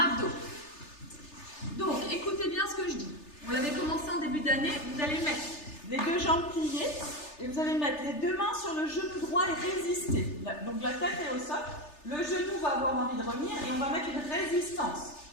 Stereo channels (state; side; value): late; right; 3.3 ms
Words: Donc, écoutez bien ce que je dis. On l'avait commencé en début d'année. Vous allez mettre les 2 jambes pliées et vous allez mettre les 2 mains sur le genou droit et résister. Donc, la tête est au sol. Le genou va avoir envie de revenir et on va mettre une résistance.